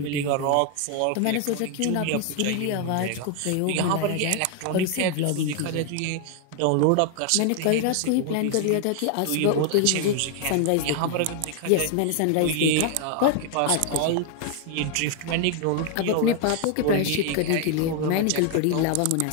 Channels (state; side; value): different; both; correlation 0.00